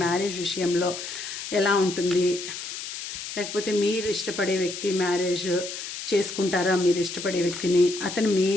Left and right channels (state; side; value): noise; left; hiss, 8 dB below the sound